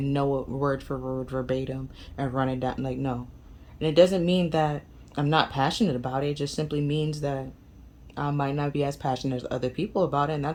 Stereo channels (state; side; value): identical; both; correlation 1.00